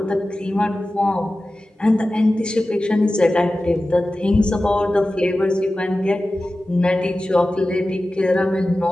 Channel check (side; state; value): both; normal; correlation 0.95